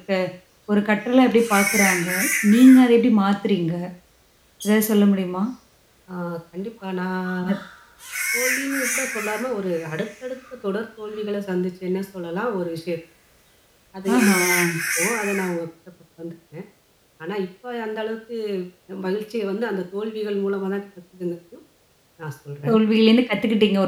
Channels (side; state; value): both; identical; correlation 1.00